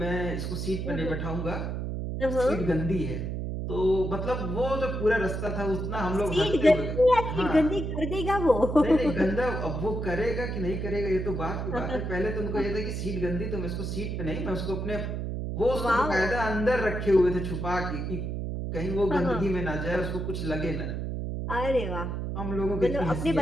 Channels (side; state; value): right; noise; hum, 3 dB below the sound